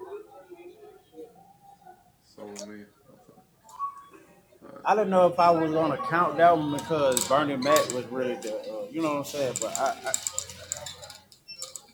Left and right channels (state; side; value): identical; both; correlation 1.00